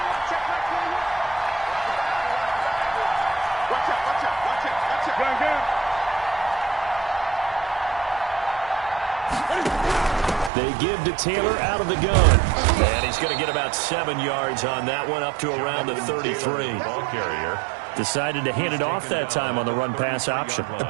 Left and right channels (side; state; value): left; drops out; at 10.5 s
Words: They give to Taylor out of the gun. And he's going to get about 7 yards on that one, up to around the 33. Ball carrier. Decided to hand it off that time on the run-pass option.